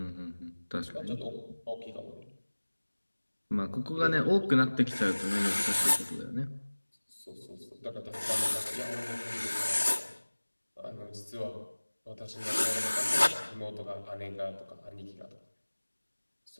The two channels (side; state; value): both; inverted; correlation -1.00